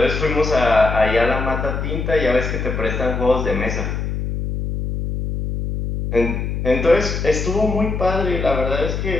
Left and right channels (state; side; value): noise; left; hum, 3 dB below the sound